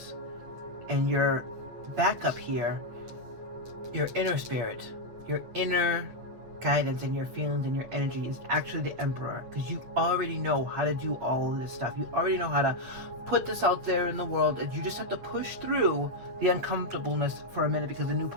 and your backup here, your inner spirit, your inner guidance and your feelings and your energy is actually the Emperor, because you already know how to do all of this stuff. You already know how to put this out there in the world, and you just have to push through the uncomfortableness for a minute because the new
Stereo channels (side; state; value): left; late; 8.7 ms